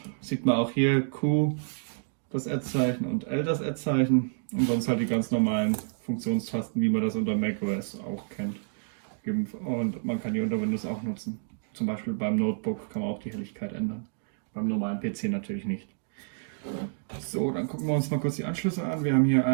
Sieht man auch hier Q das Ad-Zeichen und L das Ad-Zeichen. Und sonst halt die ganz normalen Funktionstasten, wie man das unter macOS auch kennt. Und man kann die unter Windows auch nutzen. Zum Beispiel beim Notebook kann man auch die Helligkeit ändern. Beim normalen PC natürlich nicht. So, dann gucken wir uns mal kurz die Anschlüsse an. Wir haben hier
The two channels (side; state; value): left; silent; digital silence